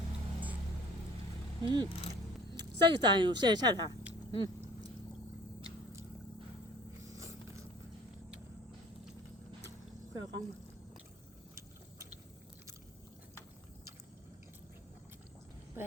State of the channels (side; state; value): both; normal; correlation 0.50